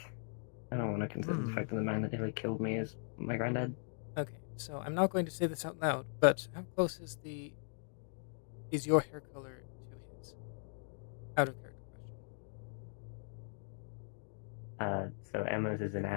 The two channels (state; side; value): silent; right; 52 dB below the other